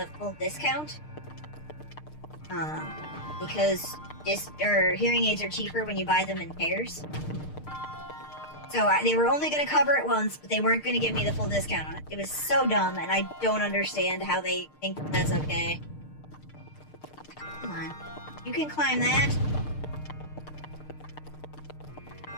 full discount. Because hearing aids are cheaper when you buy them in pairs. So they were only going to cover it once, but they weren't going to give me the full discount on it. It was so dumb, and I don't understand how they think that's okay. Come on. You can climb that.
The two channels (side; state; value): right; late; 6.6 ms